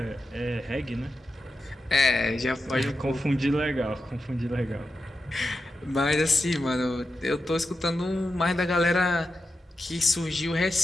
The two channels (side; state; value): both; normal; correlation 0.89